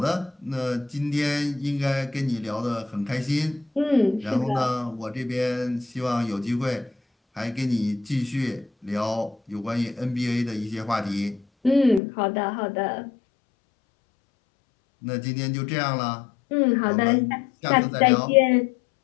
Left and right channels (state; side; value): drops out; right; at 12.0 s